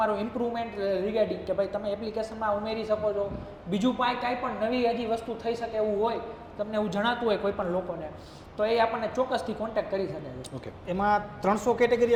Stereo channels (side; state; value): both; identical; correlation 1.00